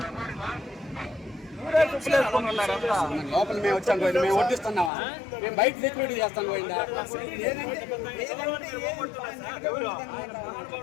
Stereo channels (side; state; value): right; drops out; at 4.9 s